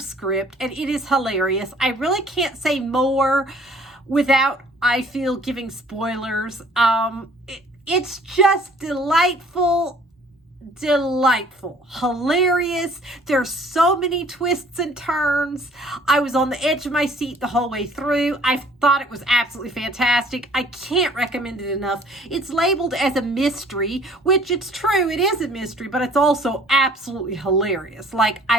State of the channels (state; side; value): normal; both; correlation 0.55